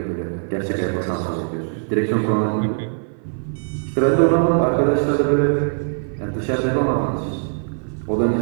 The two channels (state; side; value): silent; left; 55 dB below the other